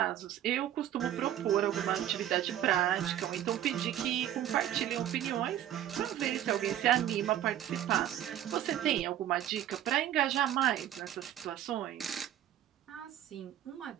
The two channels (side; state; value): left; quieter; 11.7 dB